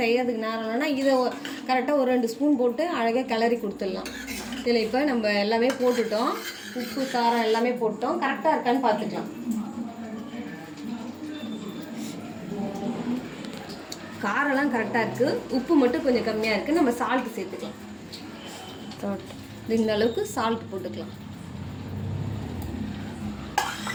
செய்யறதுக்கு நேரம் இல்லைன்னா இதை கரெக்டாக ஒரு 2 ஸ்பூன் போட்டு அழகாக கிளறி கொடுத்துடலாம். இதில் இப்போ நம்ம எல்லாமே போட்டுட்டோம். உப்பு காரம் எல்லாமே போட்டோம். கரெக்டாக இருக்கான்னு பார்த்துக்கலாம். காரெல்லாம் கரெக்டாக இருக்குது. உப்பு மட்டும் கொஞ்சம் கம்மியாக இருக்குது. நம்ம சால்ட்டு சேர்த்துக்கலாம். இந்த அளவுக்கு சால்ட் போட்டுக்கலாம்.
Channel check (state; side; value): identical; both; correlation 1.00